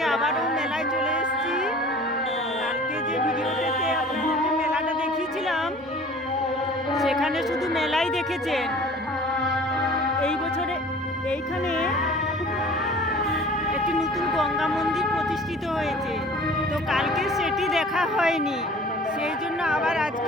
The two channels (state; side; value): normal; both; correlation 0.46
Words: আবারও মেলায় চলে এসেছি। কালকে যে ভিডিওটাতে আপনাদেরকে মেলাটা দেখিয়েছিলাম, সেখানে শুধু মেলাই দেখেছেন। এই বছরে এইখানে একটি নতুন গঙ্গা মন্দির প্রতিষ্ঠিত হয়েছে, তো কালকে সেটি দেখা হয়নি, সেই জন্য আবার